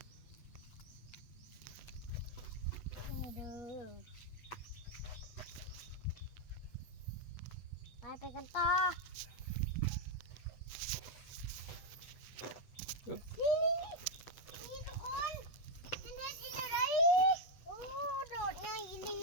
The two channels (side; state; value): right; late; 8.4 ms